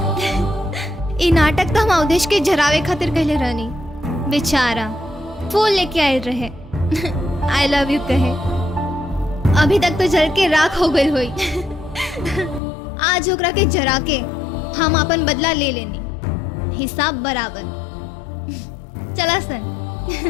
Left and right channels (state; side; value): drops out; right; at 12.6 s